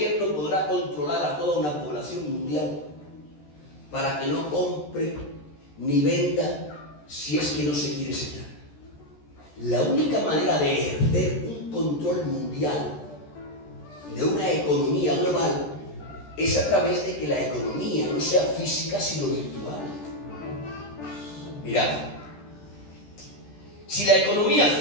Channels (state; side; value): late; right; 14 ms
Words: podrá controlar a toda una población mundial para que no compre ni venda si es que no se quiere sellar? La única manera de ejercer un control mundial de una economía global es a través de que la economía no sea física sino virtual. Mirad, si la economía